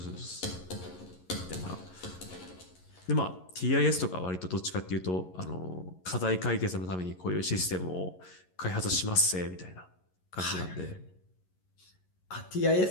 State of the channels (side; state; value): right; late; 11 ms